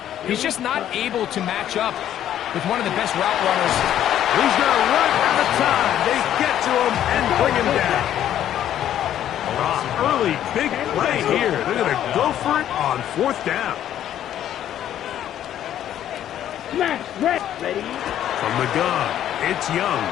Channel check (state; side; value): quieter; right; 11.2 dB